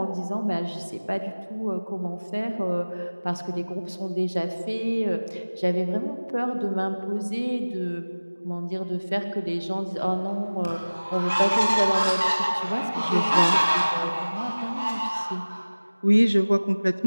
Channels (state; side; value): inverted; both; correlation -1.00